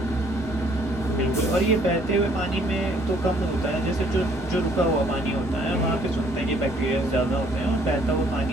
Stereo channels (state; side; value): normal; both; correlation 0.62